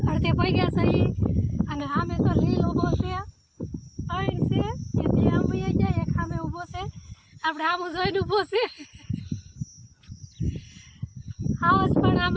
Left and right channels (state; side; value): identical; both; correlation 1.00